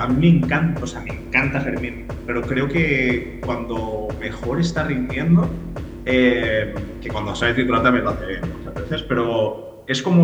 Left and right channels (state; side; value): identical; both; correlation 1.00